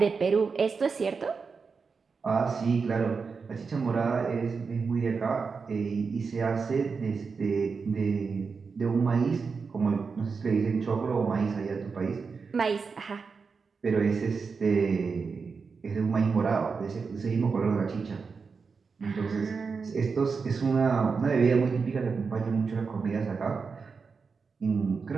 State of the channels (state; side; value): quieter; left; 5.1 dB